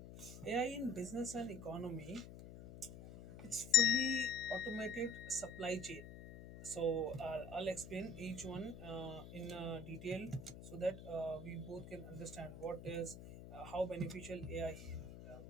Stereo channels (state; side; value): noise; left; hum, 13 dB below the sound